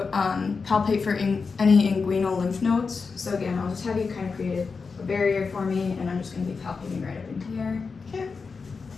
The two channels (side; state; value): right; quieter; 4.8 dB